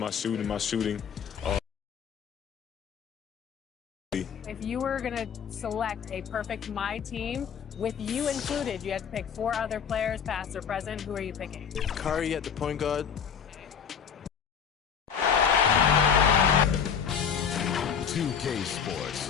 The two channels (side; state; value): right; quieter; 7.3 dB